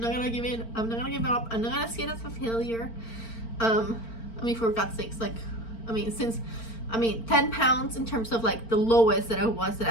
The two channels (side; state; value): right; late; 4.4 ms